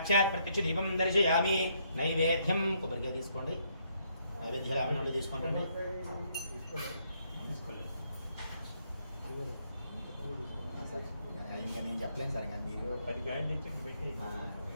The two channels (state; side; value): inverted; both; correlation -0.72